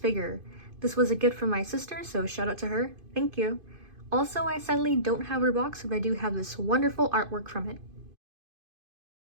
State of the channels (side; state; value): left; late; 2.5 ms